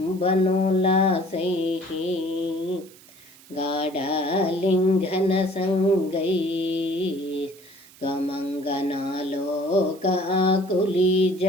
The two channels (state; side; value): noise; right; hiss, 23 dB below the sound